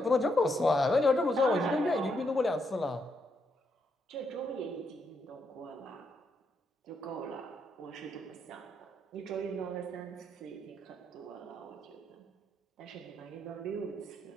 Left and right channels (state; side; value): normal; both; correlation 0.78